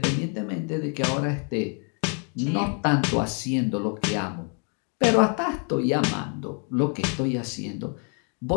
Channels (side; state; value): right; quieter; 39.8 dB